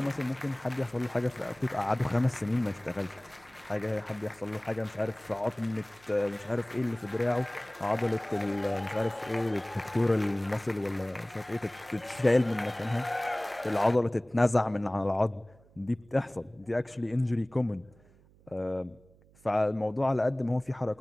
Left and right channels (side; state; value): right; noise; hum, 28 dB below the sound